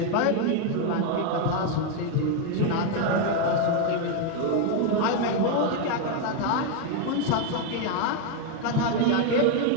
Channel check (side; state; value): both; different; correlation 0.01